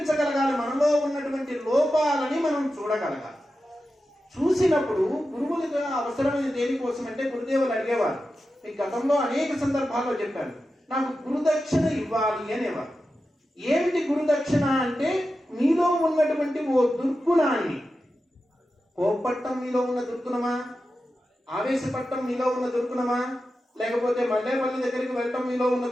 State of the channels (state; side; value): normal; both; correlation 0.91